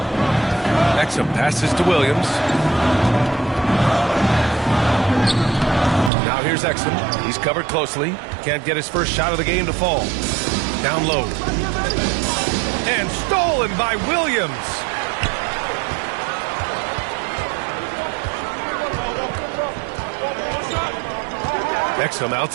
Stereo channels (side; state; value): left; drops out; at 6.1 s